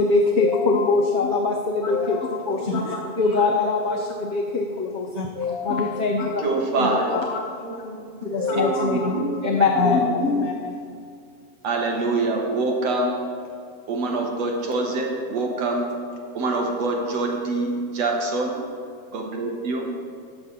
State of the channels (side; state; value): left; late; 8.1 ms